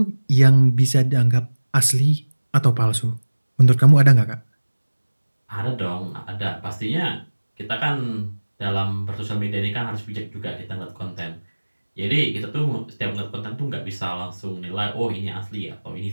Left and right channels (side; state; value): both; inverted; correlation -1.00